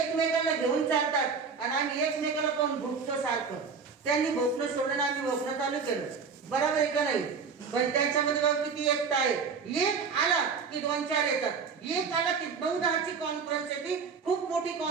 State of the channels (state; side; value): quieter; left; 5.5 dB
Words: घेऊन चालतात आणि आम्ही एकमेकाला पण भोगतो सारखं. त्यांनी भोगणं सोडलं, आम्ही भोगणं चालू केलं. बरोबर आहे का नाही? पण त्याच्यामध्ये बघा किती एकता आहे. एक आला की 2-4 येतात. एक आला की 9-10ची कॉन्फरन्स येते. खूप मोठी